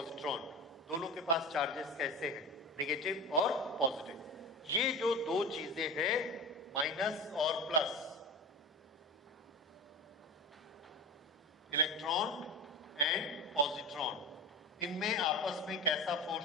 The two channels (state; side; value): normal; both; correlation 0.28